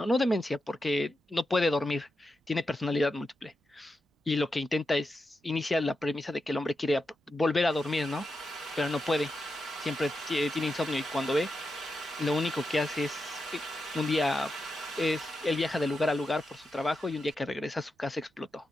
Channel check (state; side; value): normal; both; correlation 0.88